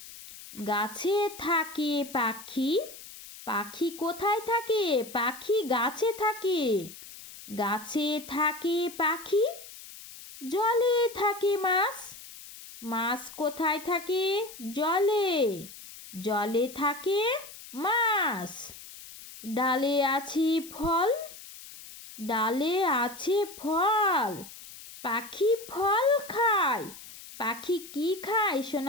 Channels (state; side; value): noise; left; hiss, 16 dB below the sound